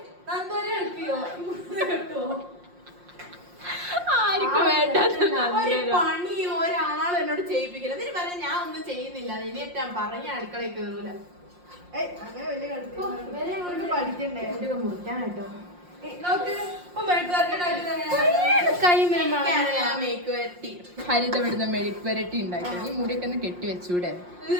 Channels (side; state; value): left; late; 5.6 ms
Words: ആർക്കും വേണ്ടാത്ത ഒരു പണിയും ഒരാളും എന്നോട് ചെയ്യിപ്പിക്കില്ല. എന്നിട്ട് പറയാൻ ഞാൻ ഒന്നും ചെയ്യുന്നില്ല. ഇനിയിട്ട് ഞാൻ പറഞ്ഞ അടുക്കളയിൽ കേറൂല. പഠിക്കണ്ടേ മുറിക്കാനായിട്ടോ. ഹരിത വിടുന്ന മെഴുക്ക് വരട്ടി ഉണ്ടാക്കി. ഈ മുടിയൊക്കെ ഒന്ന് കെട്ടി വെച്ചൂടെ?